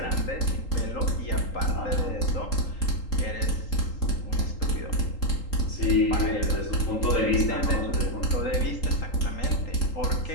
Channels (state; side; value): late; right; 3.8 ms